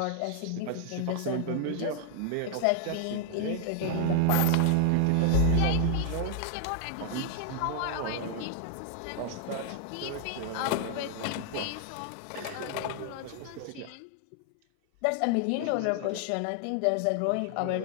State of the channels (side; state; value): both; different; correlation 0.00